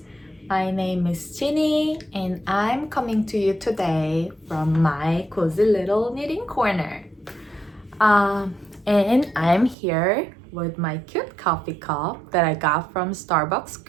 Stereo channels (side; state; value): left; drops out; at 9.8 s